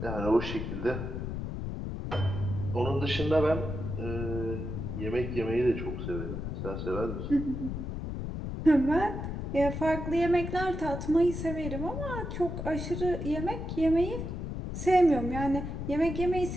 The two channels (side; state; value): left; noise; rumble, 5 dB below the sound